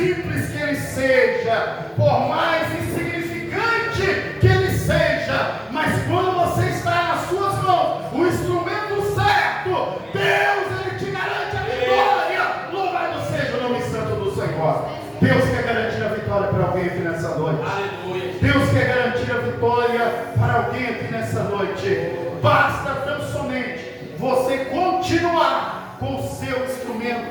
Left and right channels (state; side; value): identical; both; correlation 1.00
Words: que ele seja, por mais insignificante que ele seja, mas quando você está nas suas mãos, o instrumento certo, Deus, ele te garante a vitória. Louvado seja o nome santo do Senhor. Deus quer garantir a vitória para alguém aqui nessa noite. Aleluia. Deus quer garantir a vitória para alguém aqui nessa noite. Basta tão somente você continuar com o seu